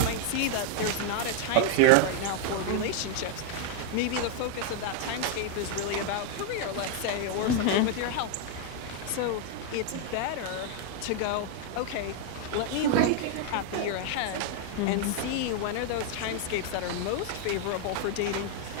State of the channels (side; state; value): both; different; correlation 0.00